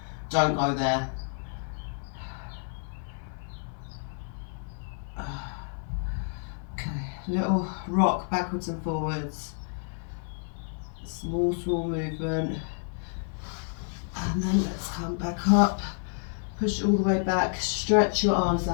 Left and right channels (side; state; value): right; silent; 58 dB below the other